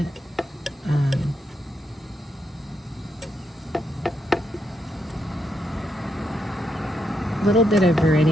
it. A little bit of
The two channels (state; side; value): normal; both; correlation 0.80